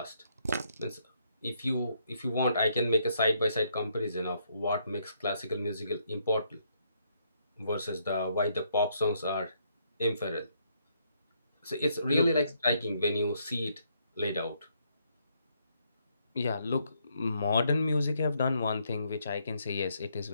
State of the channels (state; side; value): inverted; both; correlation -0.73